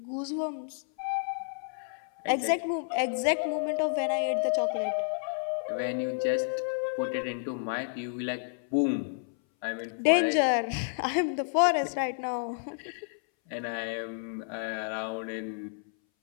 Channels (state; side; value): silent; right; 57 dB below the other